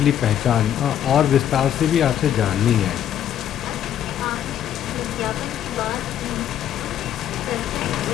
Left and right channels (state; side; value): quieter; right; 10.3 dB